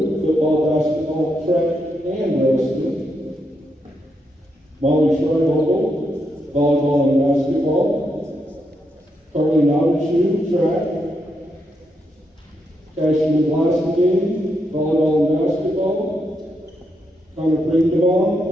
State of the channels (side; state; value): both; normal; correlation 0.81